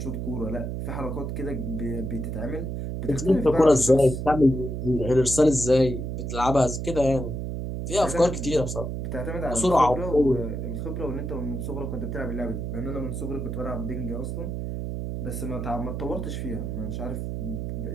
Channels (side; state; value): right; noise; hum, 4 dB below the sound